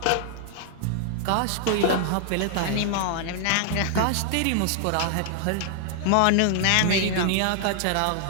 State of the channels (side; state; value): both; different; correlation 0.00